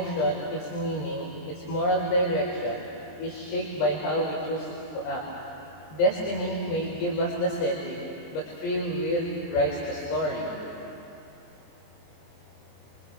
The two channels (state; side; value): late; right; 23 ms